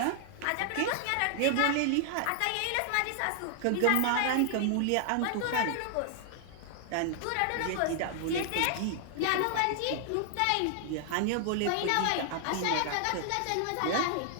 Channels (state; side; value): different; both; correlation 0.00